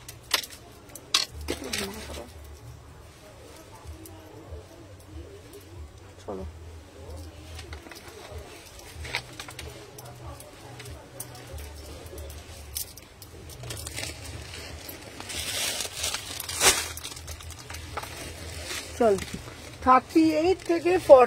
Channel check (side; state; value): both; identical; correlation 1.00